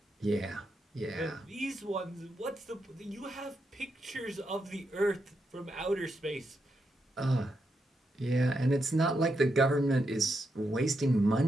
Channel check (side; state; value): both; normal; correlation 0.83